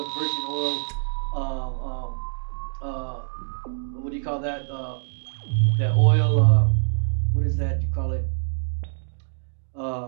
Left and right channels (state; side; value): silent; left; digital silence